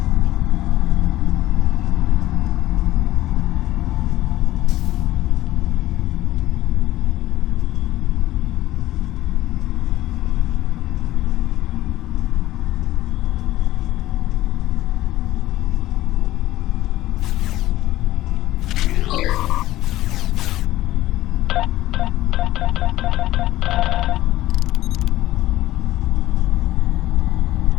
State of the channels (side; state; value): right; quieter; 15.5 dB